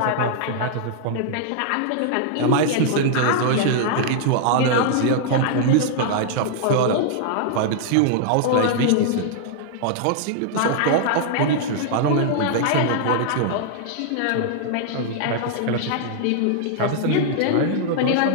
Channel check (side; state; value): both; different; correlation -0.01